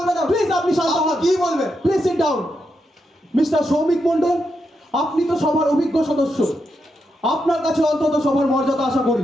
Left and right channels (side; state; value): both; normal; correlation 0.84